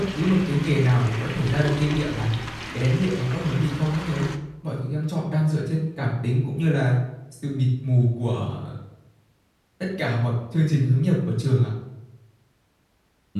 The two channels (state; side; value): identical; both; correlation 1.00